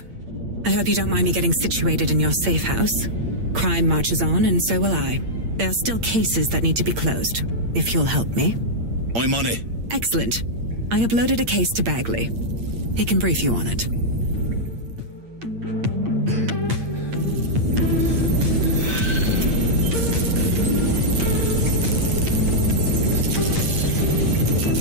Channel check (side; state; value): left; late; 8.7 ms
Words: I hope you don't mind me getting situated in your safe house. Crime marches on, and so will I. There are still cases that need to be closed, if you'll help me. I'm on it. Excellent. I uploaded a case to Bagley. He can brief you on it.